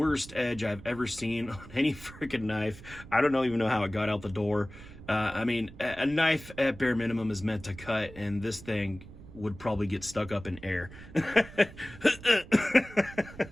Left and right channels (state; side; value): noise; right; rumble, 17 dB below the sound